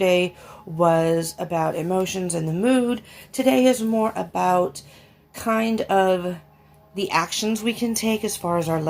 was about emotions and the mood. Today is more about kind of the actions we can take as far as our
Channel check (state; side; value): identical; both; correlation 1.00